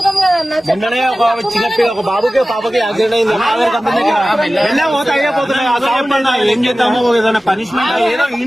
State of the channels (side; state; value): both; normal; correlation 0.96